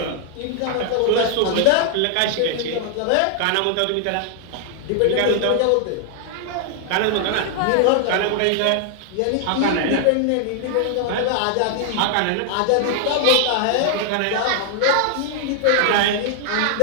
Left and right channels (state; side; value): different; both; correlation 0.00